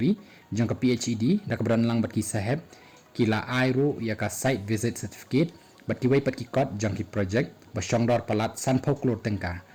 jang ke PHED dak beran lang bat ki saheb kila airu ya ka site visit certificate bat ki wai pat ki kot jang ki project basyongdor palat san phoklor tengka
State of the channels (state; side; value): identical; both; correlation 1.00